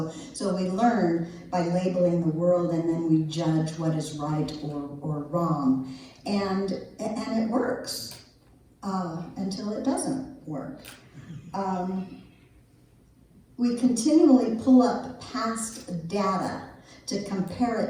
we learn by labeling the world, and then we judge what is right or wrong. And it works until it doesn't work. we continually pull up past data to compare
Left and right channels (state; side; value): identical; both; correlation 1.00